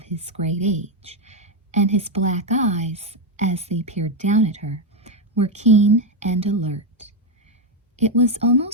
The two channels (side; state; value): both; normal; correlation 0.05